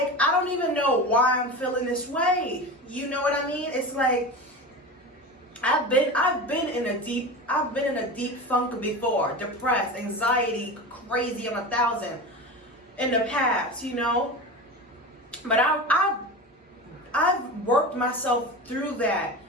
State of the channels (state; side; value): normal; both; correlation 0.28